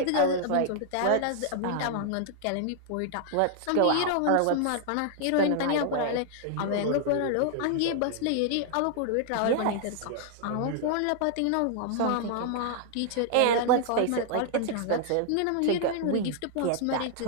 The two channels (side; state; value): both; different; correlation -0.01